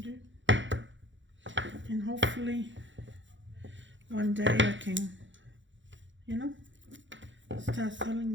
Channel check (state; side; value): late; left; 0.54 ms